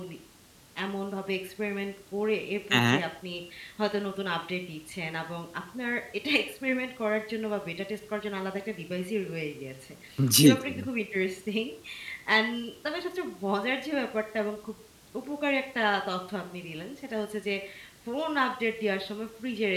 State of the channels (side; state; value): both; identical; correlation 1.00